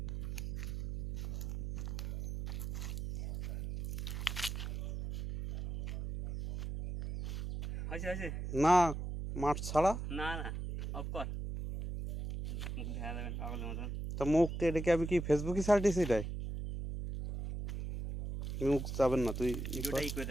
না মাঠ ছাড়া না না অফ কর মুখ দেখা যাবে না পাগলের মতন তা মুখ এটাকে আমি কি ফেসবুকে ছাড়তেছি এটাই মুখ যাবেন না তুই ভিডিওটাই করে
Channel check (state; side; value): noise; right; hum, 4 dB below the sound